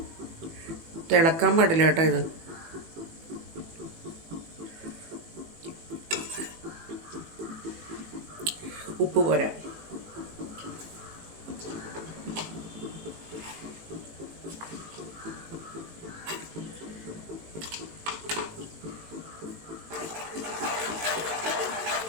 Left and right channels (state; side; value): late; left; 18 ms